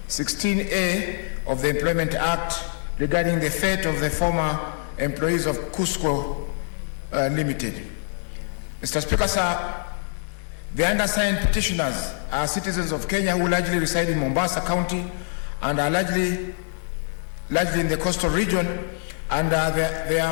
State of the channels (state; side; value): silent; right; digital silence